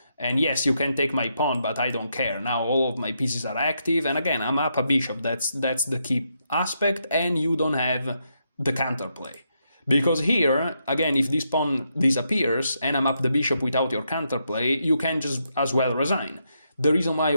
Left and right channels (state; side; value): inverted; both; correlation -0.80